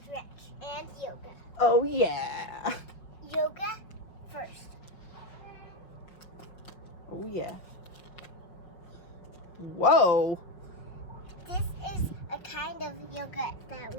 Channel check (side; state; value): right; late; 5.7 ms